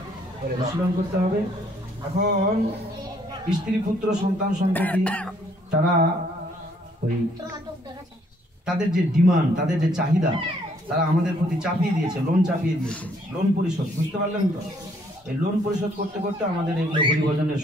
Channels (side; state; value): both; normal; correlation 0.66